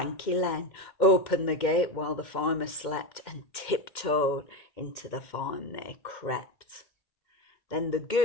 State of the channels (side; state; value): right; late; 2.1 ms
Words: Len, opened the gate while the farmer slept, and tiptoed into the farm they crept. Then the